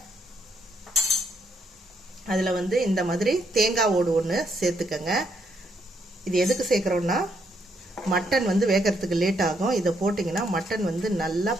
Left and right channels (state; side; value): normal; both; correlation 0.75